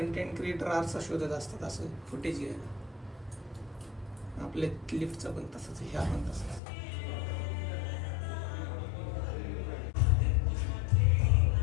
क्रिएटर आरसा शोधत असतात असं फुटेज घ्यायला. आपल्या लिफ्टचं पण तसंच, ह्या पण तसंच.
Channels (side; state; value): right; drops out; at 6.6 s